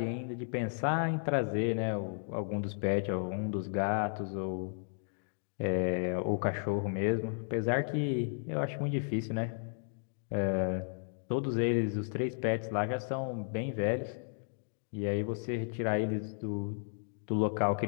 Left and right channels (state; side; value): silent; right; digital silence